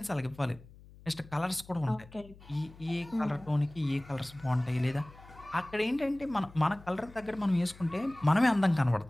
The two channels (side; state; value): left; noise; hum, 21 dB below the sound